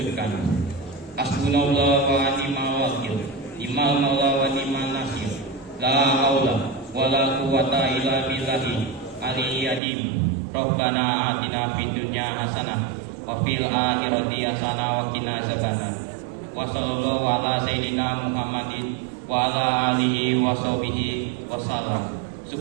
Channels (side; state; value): left; drops out; at 9.8 s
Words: Hasbunallah wa ni'mal wakil, ni'mal maula wa ni'mal nasir, la haula wa la quwata illa billahi aliyyil azim. Rabbana atina fid dunya hasanah wa fil akhirati hasanah wa qina azabannar. Wa sallallahu ala sayyidina Muhammadin wa ala alihi wa sahbihi wa sallam.